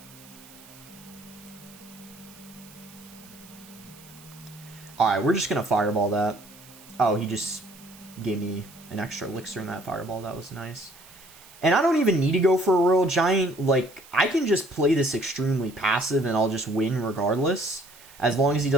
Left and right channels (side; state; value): right; noise; hiss, 21 dB below the sound